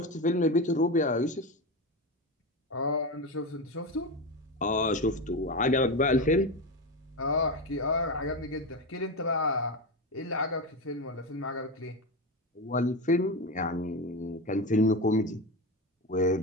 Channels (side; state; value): both; normal; correlation 0.18